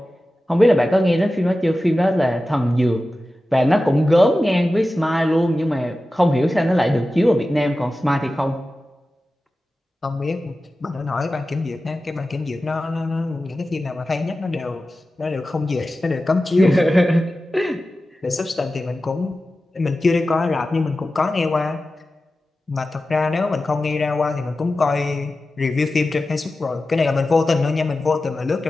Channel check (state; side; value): normal; both; correlation 0.94